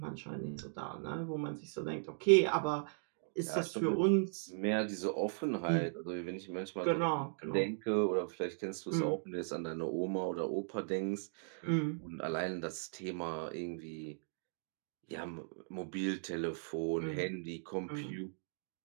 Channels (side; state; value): left; silent; digital silence